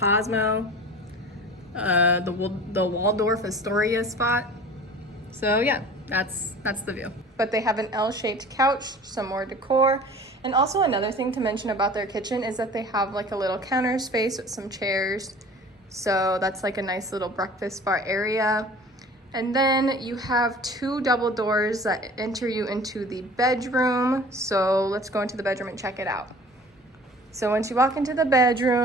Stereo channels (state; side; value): normal; both; correlation 0.43